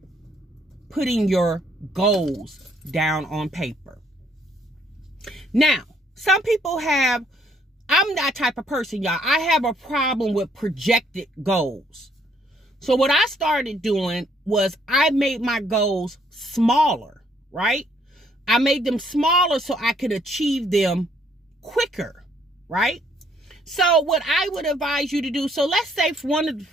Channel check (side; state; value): both; normal; correlation 0.67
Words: putting your goals down on paper. Now, some people I'm that type of person, y'all. I have a problem with projected goals. So what I started doing was I made my goals smaller, right? I made them smaller so I could achieve them quicker, right? So what I would advise you to do, so let's say